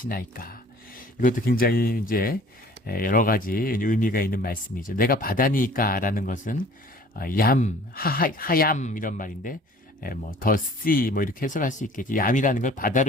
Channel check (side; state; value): both; normal; correlation 0.50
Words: 이것도 굉장히 이제 여러 가지 의미가 있는 말씀이죠. 내가 바다니까 라는 것은 하얌 이런 말인데 뭐 더 씨 뭐 이렇게 해석할 수 있겠지. 얌이라는 걸